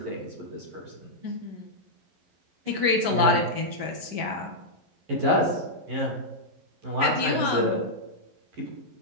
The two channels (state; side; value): late; left; 11 ms